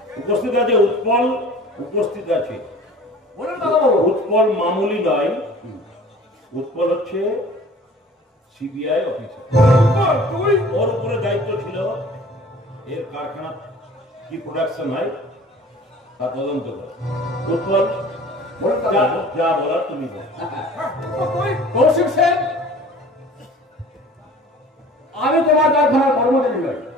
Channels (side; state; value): both; normal; correlation 0.46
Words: উপস্থিত আছে উৎপল, উপস্থিত আছে। বলুন দাদাবাবু। উৎপল মামুলি নয়, উৎপল হচ্ছে সিবিআই অফিসার। তুই ওর উপরে দায়িত্ব ছিল এর কারখানা কি প্রোডাকশন হয় তা তদন্ত করে। উৎপল বলুন যা দাদাবাবু। যা বলার তুমি বল। তুই কৌশিক সেন, আমি তোমার কারখানার কর্মচারী নই,